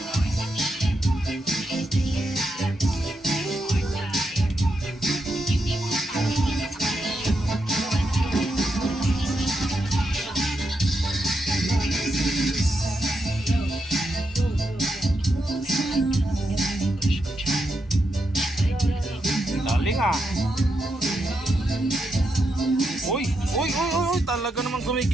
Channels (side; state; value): both; normal; correlation 0.84